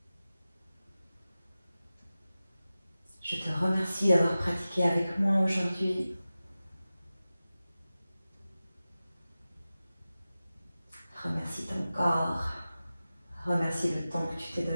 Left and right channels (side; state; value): both; inverted; correlation -0.95